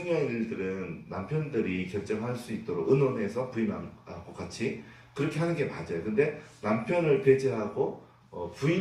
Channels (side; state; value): both; identical; correlation 1.00